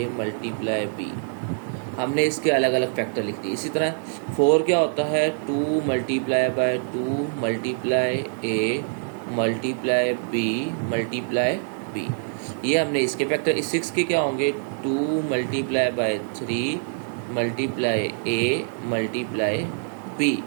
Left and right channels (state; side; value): silent; left; digital silence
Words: b। हमने इसके अलग अलग फैक्टर लिख दिए। इसी तरह 4 क्या होता है, 2 multiply by 2 multiply a multiply b multiply b। ये हमने इसके फैक्टर। 6 के क्या होंगे, 2 multiply by 3 multiply a multiply b।